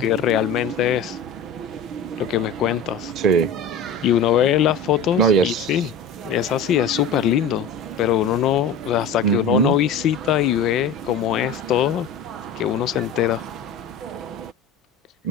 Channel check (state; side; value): quieter; right; 4.7 dB